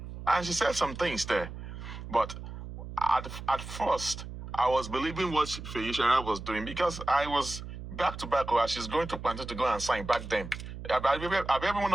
And she said some things there. But at first, I was believing what Feyishara was doing because I was back to back where she's going to Panther to go and sign back then. Have every one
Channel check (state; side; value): noise; right; hum, 10 dB below the sound